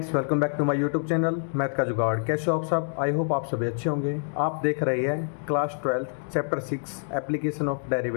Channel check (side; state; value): right; silent; digital silence